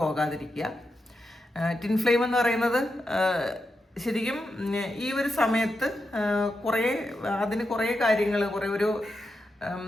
ടിൻ ഫ്ലെയിം എന്ന് പറയുന്നത് ശരിക്കും ഈ ഒരു സമയത്ത് അതിന് കുറേ കാര്യങ്ങൾ,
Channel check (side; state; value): both; normal; correlation 0.87